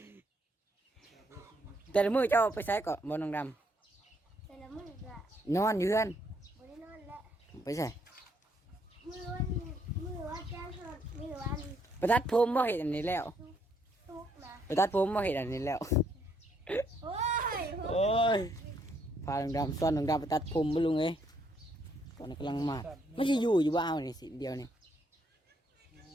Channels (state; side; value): normal; both; correlation 0.72